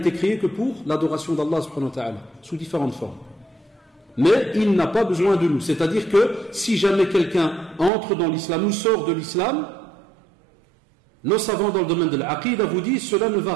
créé que pour l'adoration d'Allah subhanahu wa ta'ala, sous différentes formes. Mais il n'a pas besoin de nous. C'est-à-dire que si jamais quelqu'un entre dans l'islam ou sort de l'islam, Nos savants dans le domaine de l'aqida vous disent cela ne va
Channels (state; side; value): drops out; left; at 7.9 s